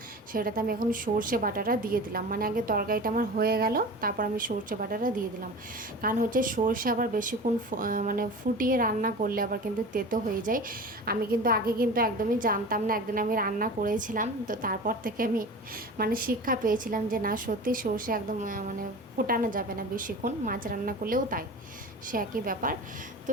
সেটাতে আমি এখন সর্ষে বাটাটা দিয়ে দিলাম। মানে আগে তরকারিটা আমার হয়ে গেল, তারপর আমি সর্ষে বাটাটা দিয়ে দিলাম। কারণ হচ্ছে সর্ষে আবার বেশিক্ষণ মানে ফুটিয়ে রান্না করলে আবার কিন্তু তেতো হয়ে যায়। আমি কিন্তু আগে কিন্তু একদমই জানতাম না, একদিন আমি রান্না করেছিলাম, তো তারপর থেকে আমি মানে শিক্ষা পেয়েছিলাম যে না, সত্যি সর্ষে একদম মানে ফোটানো যাবে না বেশিক্ষণ, মাছ রান্না করলেও তাই, সে একই ব্যাপার। তো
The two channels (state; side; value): normal; both; correlation 0.35